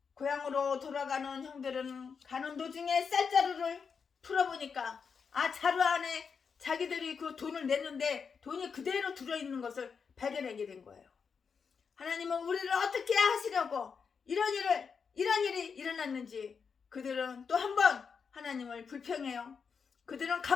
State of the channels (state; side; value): quieter; right; 6.0 dB